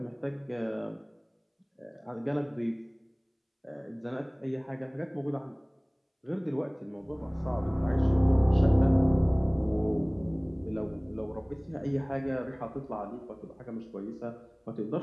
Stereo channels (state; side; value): identical; both; correlation 1.00